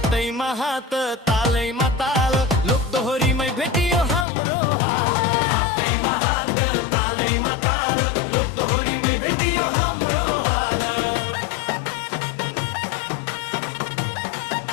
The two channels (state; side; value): drops out; right; at 4.2 s